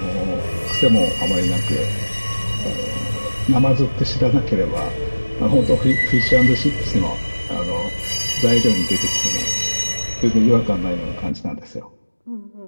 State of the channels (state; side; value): inverted; both; correlation -1.00